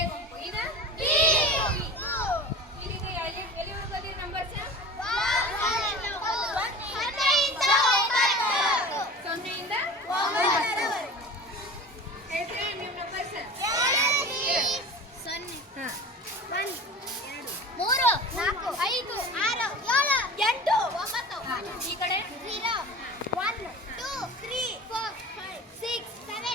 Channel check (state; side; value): normal; both; correlation 0.36